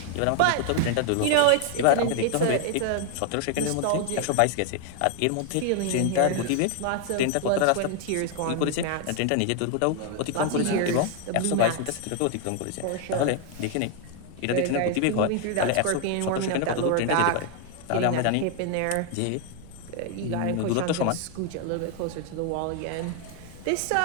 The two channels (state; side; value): different; both; correlation 0.00